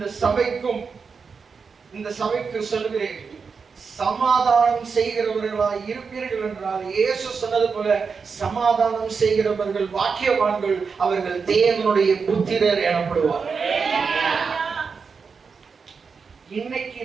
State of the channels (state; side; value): quieter; left; 5.4 dB